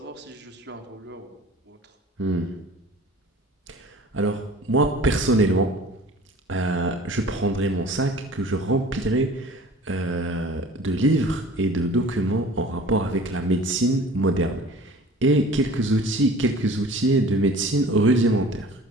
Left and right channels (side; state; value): both; normal; correlation 0.44